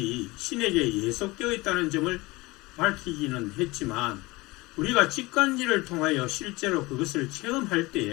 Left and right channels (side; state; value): right; quieter; 22.2 dB